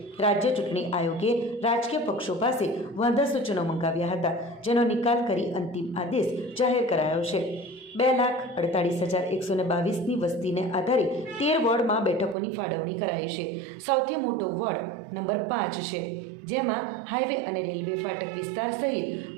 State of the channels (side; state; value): left; drops out; at 12.4 s